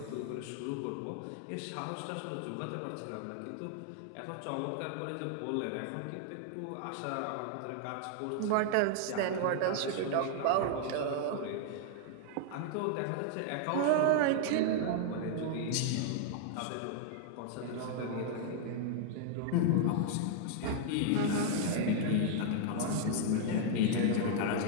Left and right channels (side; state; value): both; different; correlation 0.00